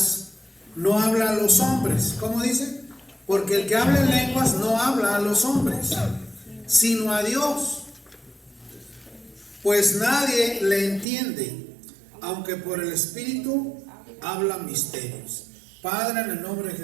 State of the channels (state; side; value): drops out; left; at 11.1 s